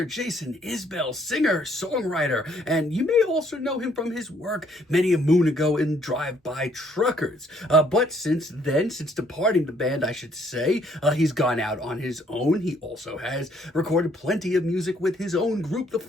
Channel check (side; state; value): both; normal; correlation 0.65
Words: Jason Isbell, singer-songwriter. And you may also know him from his work many a moon ago in Drive-By Truckers. But since then, since departing the band, I should say, he's gone out on his own. He also has recorded plenty of music with his own group, the